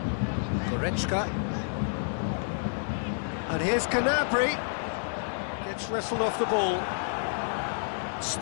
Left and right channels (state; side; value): silent; right; digital silence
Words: Goretzka. And here's Gnabry. Gets wrestled off the ball.